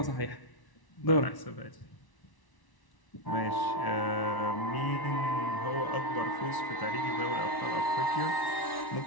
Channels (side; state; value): right; late; 1.1 ms